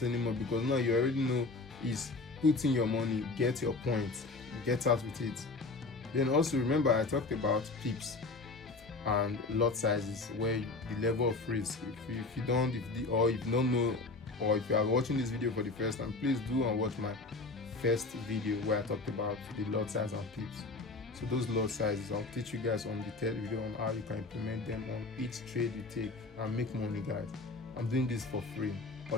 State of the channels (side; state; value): right; quieter; 3.5 dB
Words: anymore, because now you already know is put in your money, get your points, get out with it. Then also remember I talked about pips and lot sizes, where the level of risk. If you don't know, or if you are watching this video for the first time, please do and watch my first video where I talked about the lot size and pips. So those lot sizes, I'll teach you guys on the third video on how you can implement them on each trade you take and make money, guys. I'm doing this for free.